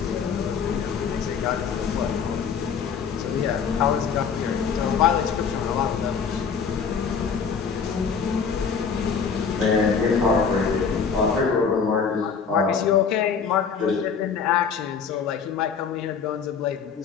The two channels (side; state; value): right; quieter; 6.3 dB